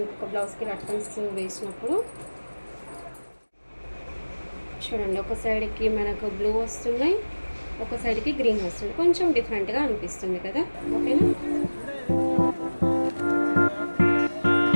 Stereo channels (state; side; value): inverted; both; correlation -1.00